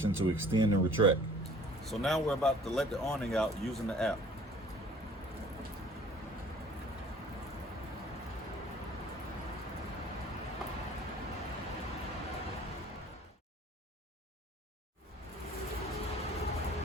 to extend and retract. So now we're about to let the awning out using the app.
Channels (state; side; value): normal; both; correlation 0.52